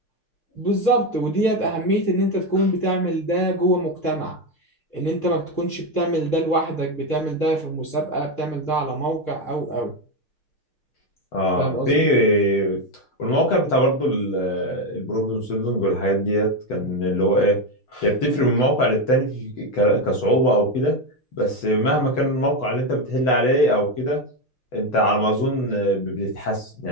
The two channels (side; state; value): right; late; 6.6 ms